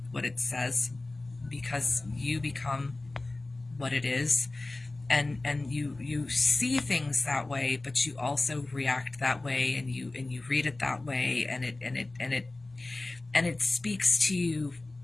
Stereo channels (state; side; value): quieter; right; 3.0 dB